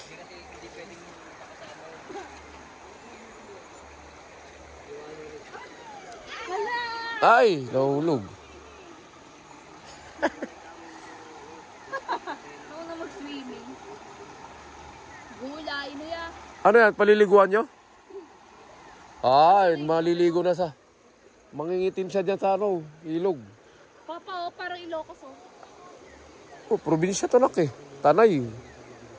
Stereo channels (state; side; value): identical; both; correlation 1.00